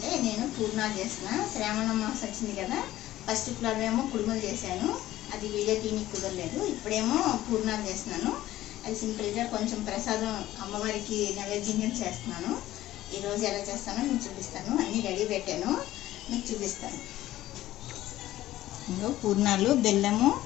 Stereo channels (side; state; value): right; quieter; 14.9 dB